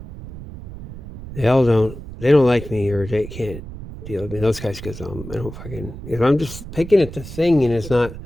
they don't like me, or they can't deal with me. Those guys, because I don't fucking, I'm just picking at the thing, and it's not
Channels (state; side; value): noise; right; rumble, 12 dB below the sound